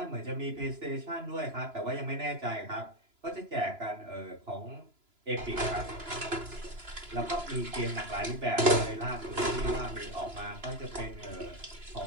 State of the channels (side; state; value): left; late; 3.0 ms